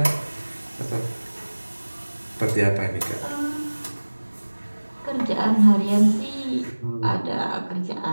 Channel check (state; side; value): inverted; both; correlation -1.00